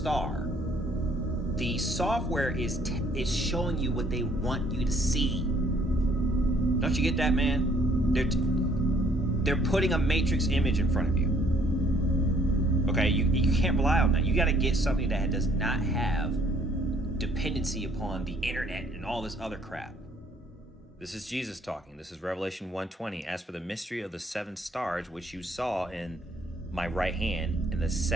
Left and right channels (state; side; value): normal; both; correlation 0.63